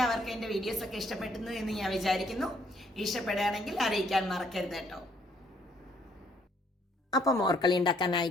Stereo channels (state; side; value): normal; both; correlation 0.67